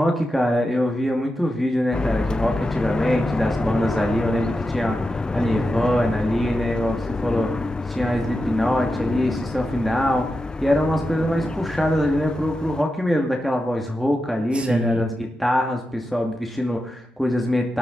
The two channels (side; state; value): both; normal; correlation 0.90